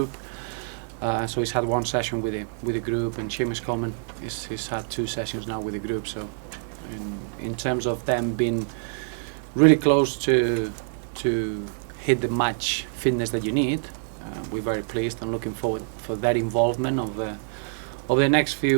so he's had one session with the group, and Seamus Coleman he's had two sessions now with the group. So in terms of them being really close to hit the match fitness that you need, we're very pleased and looking forward for that involvement of the next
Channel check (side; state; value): left; silent; digital silence